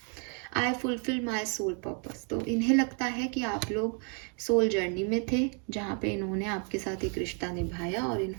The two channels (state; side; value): quieter; left; 39.7 dB